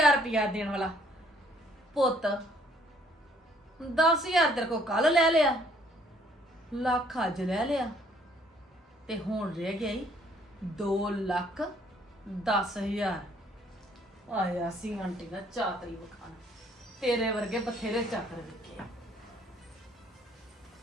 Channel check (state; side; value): normal; both; correlation 0.63